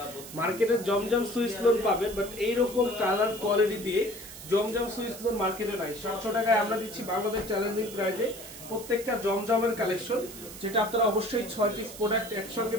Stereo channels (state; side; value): noise; right; hiss, 14 dB below the sound